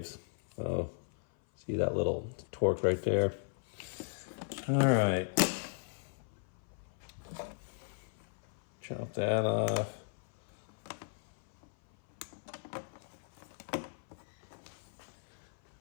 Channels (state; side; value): silent; right; 53 dB below the other